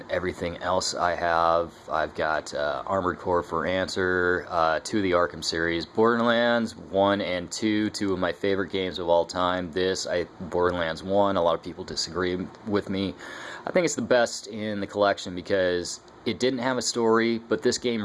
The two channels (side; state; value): both; identical; correlation 1.00